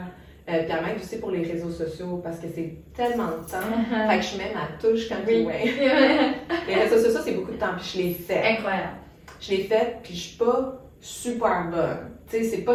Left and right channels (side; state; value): both; identical; correlation 1.00